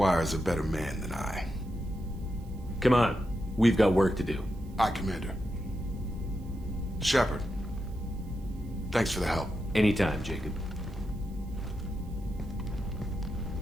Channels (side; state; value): right; noise; hiss, 29 dB below the sound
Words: a better man than I. Come on. We've got work to do. Aye, Commander. Shepard. Thanks for the help. Anytime, Jacob.